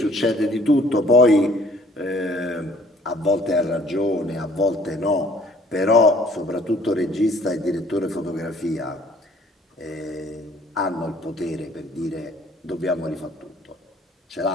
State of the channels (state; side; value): normal; both; correlation 0.57